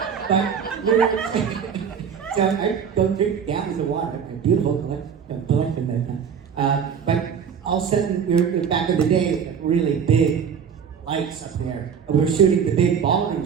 So I don't drink gallons of water. A beautiful collection that time. But all of a sudden, back in the day, like really big lights up there. We were shooting the big ballroom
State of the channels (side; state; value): left; quieter; 7.2 dB